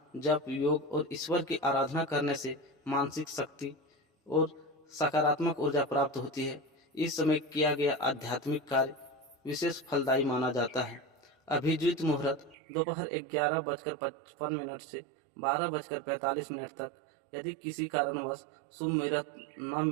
जप, योग और ईश्वर की आराधना करने से मानसिक शक्ति और सकारात्मक ऊर्जा प्राप्त होती है। इस समय किया गया आध्यात्मिक कार्य विशेष फलदायी माना जाता है। अभिजीत मुहूर्त दोपहर 11:55 से 12:45 तक। यदि किसी कारणवश शुभ मुहूर्त न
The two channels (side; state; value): left; drops out; at 12.6 s